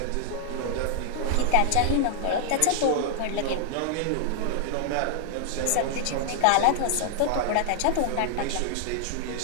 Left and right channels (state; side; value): different; both; correlation -0.01